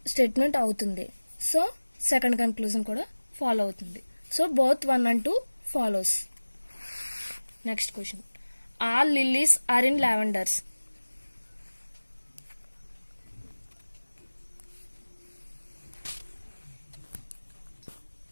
స్టేట్మెంట్ అవుతుంది. సో సెకండ్ కంక్లూజన్ కూడా ఫాలో అవుతుంది. So both 1 and 2 follows. Next question, all lilies are in lavenders.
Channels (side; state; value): both; inverted; correlation -1.00